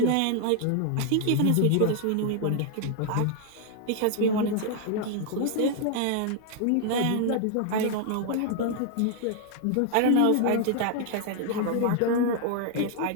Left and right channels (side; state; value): both; different; correlation 0.00